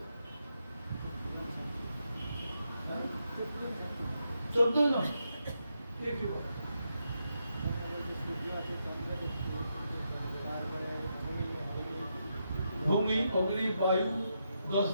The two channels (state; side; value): inverted; both; correlation -0.83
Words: 14 জন কে কি বলে, ভূমি অগ্নি বায়ু 10